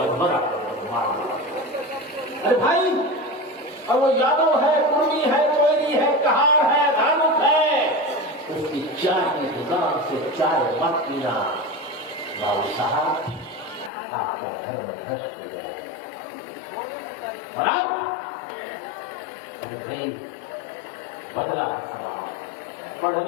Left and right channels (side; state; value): right; drops out; at 13.9 s